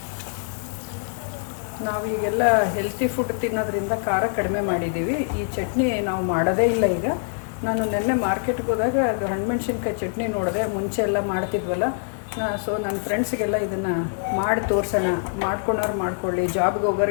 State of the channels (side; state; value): right; silent; 62 dB below the other